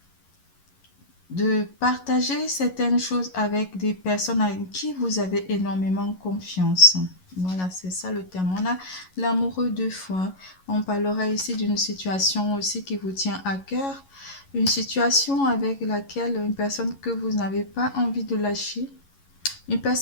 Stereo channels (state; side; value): late; right; 11 ms